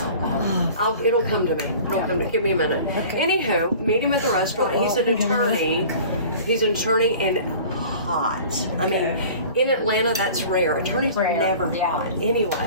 It'll come to me. It'll come to me. Give me a minute. Anywho, meet him at the restaurant. He's an attorney. He's an attorney and hot. I mean, in Atlanta, that's rare. Attorneys are Rare, never yeah. hot.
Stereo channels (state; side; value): inverted; both; correlation -0.43